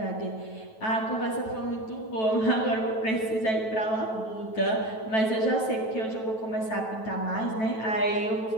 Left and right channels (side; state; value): right; late; 9.1 ms